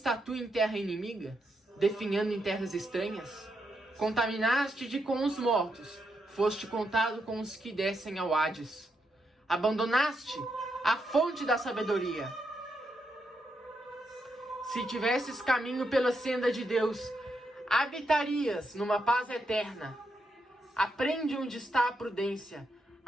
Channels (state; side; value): normal; both; correlation 0.82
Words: tu em terra inimiga, definhando em terras estranhas? Contaminaste-te com os mortos, foste contado com os que descem ao Hades. Abandonaste a fonte da sabedoria. Se tivesses caminho pela senda de Deus, habitarias numa paz eterna. Aprende onde está a prudência,